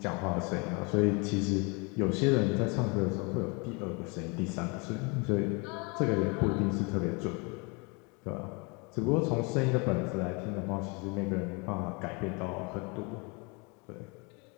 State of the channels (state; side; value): quieter; right; 30.5 dB